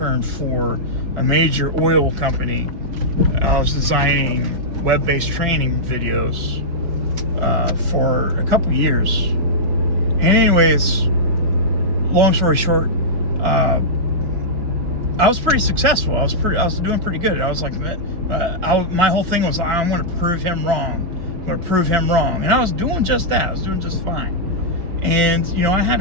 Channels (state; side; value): late; left; 5.3 ms